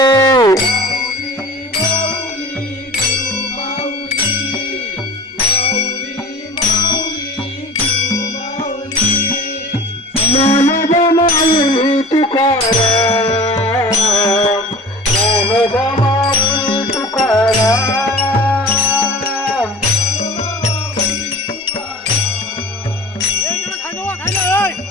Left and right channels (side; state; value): both; normal; correlation 0.39